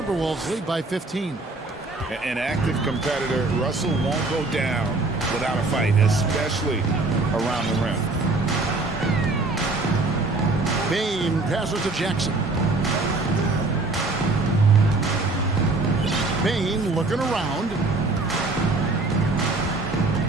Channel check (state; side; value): quieter; left; 3.3 dB